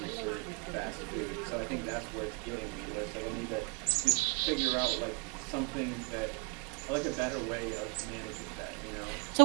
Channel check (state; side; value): quieter; left; 31.2 dB